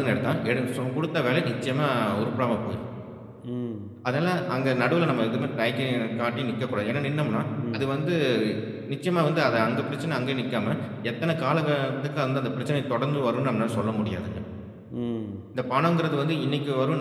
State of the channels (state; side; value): identical; both; correlation 1.00